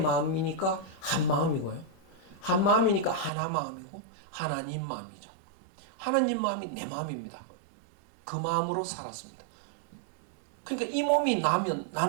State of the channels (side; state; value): left; drops out; at 3.3 s